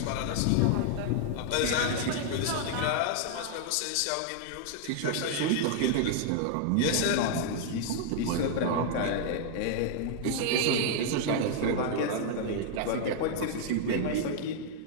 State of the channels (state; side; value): different; both; correlation 0.00